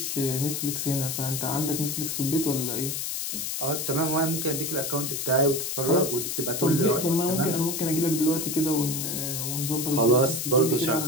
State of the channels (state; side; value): noise; left; hiss, 3 dB below the sound